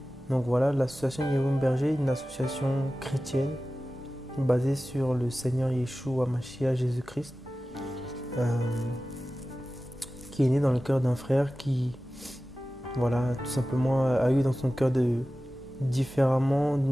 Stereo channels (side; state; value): both; normal; correlation 0.95